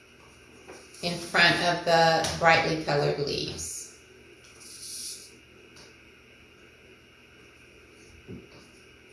in front of the brightly colored leaves.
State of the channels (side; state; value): both; identical; correlation 1.00